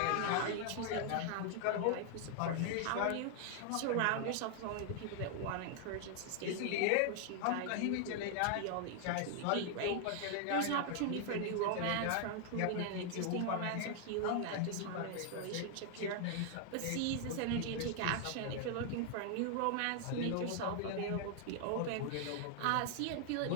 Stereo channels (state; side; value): different; both; correlation 0.00